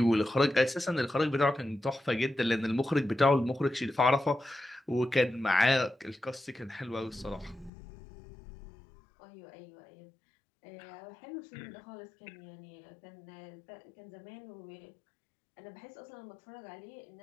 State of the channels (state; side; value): drops out; right; at 7.7 s